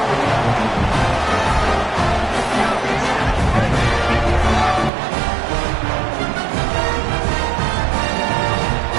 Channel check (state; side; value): drops out; left; at 4.9 s